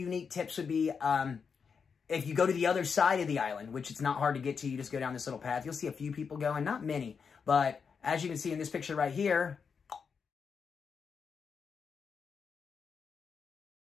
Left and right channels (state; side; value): quieter; right; 6.0 dB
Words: tips would be... if you go to the other side of the island, which it's not hard to get to, you just go down this little path. You'll see a few people going, not many. But as you can see in this picture right here,